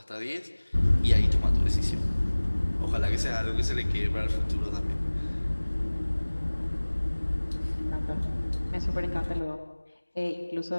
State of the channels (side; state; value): both; inverted; correlation -1.00